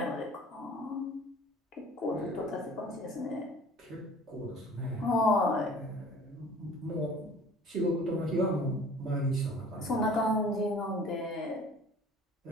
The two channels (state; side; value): normal; both; correlation 0.48